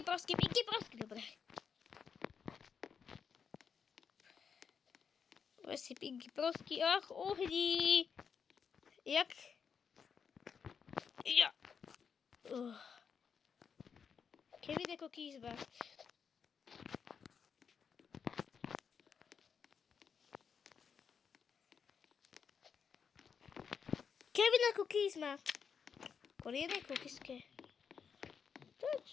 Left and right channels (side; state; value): right; quieter; 6.6 dB